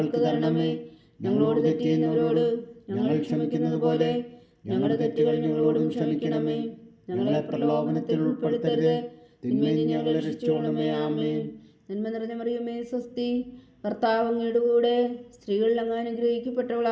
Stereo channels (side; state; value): both; identical; correlation 1.00